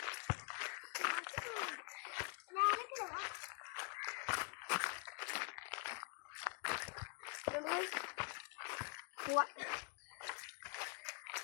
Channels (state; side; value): quieter; right; 35.0 dB